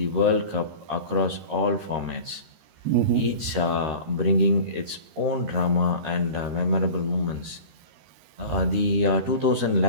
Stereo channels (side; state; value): left; late; 13 ms